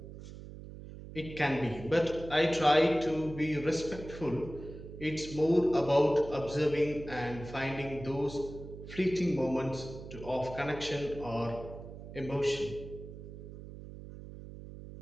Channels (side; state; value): right; noise; hum, 13 dB below the sound